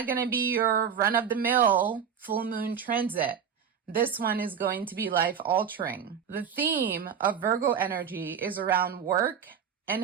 going to be your run-of-the-mill full moon transit. This one is going to be life-altering. The theme of Virgo energy is around work and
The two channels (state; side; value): quieter; left; 7.5 dB